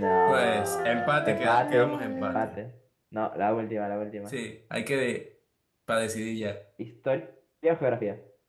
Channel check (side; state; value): both; identical; correlation 1.00